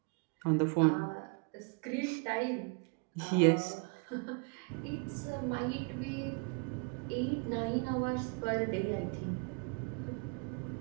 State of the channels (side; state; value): left; quieter; 35.5 dB